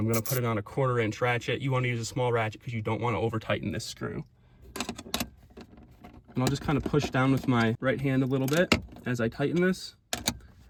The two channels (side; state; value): both; identical; correlation 1.00